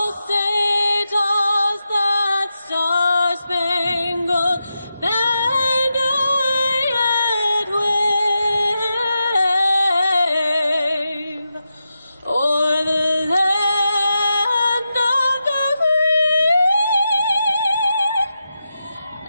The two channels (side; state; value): both; inverted; correlation -0.88